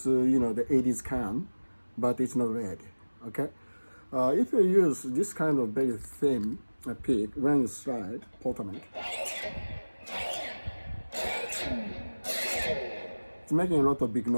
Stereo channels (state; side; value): inverted; both; correlation -1.00